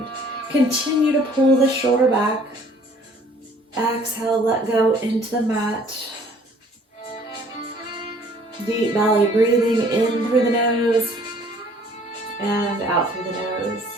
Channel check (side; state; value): both; normal; correlation 0.56